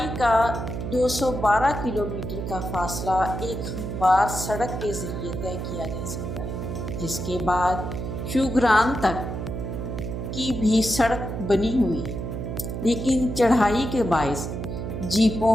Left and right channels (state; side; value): noise; right; hum, 5 dB below the sound